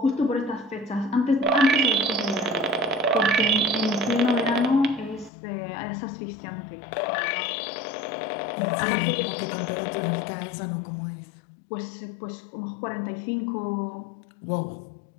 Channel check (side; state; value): right; drops out; at 5.3 s